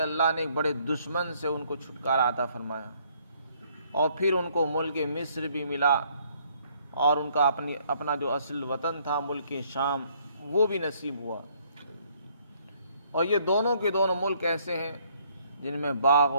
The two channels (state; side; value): inverted; both; correlation -0.65